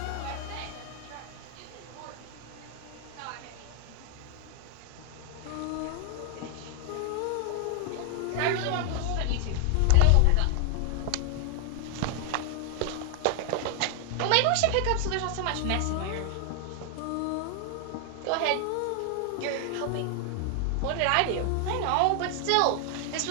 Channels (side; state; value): both; different; correlation 0.00